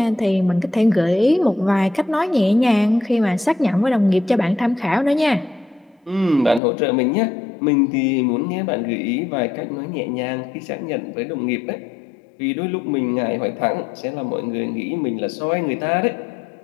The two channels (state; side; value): drops out; right; at 6.6 s